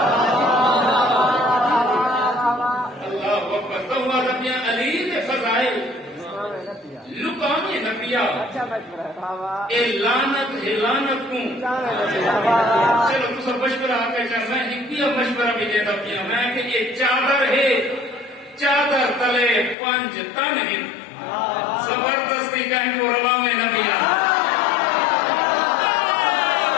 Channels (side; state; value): right; drops out; at 19.8 s